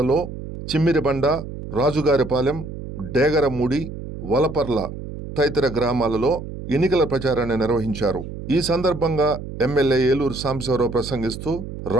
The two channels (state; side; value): noise; right; hum, 9 dB below the sound